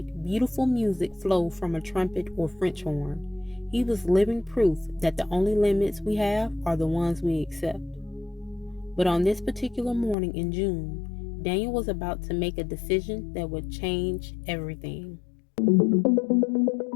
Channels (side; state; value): right; drops out; at 10.2 s